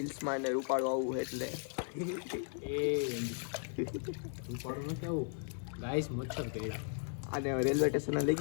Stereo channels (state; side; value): silent; right; 53 dB below the other